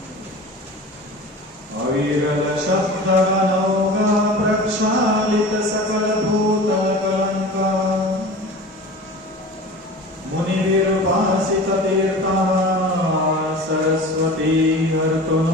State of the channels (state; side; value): normal; both; correlation 0.36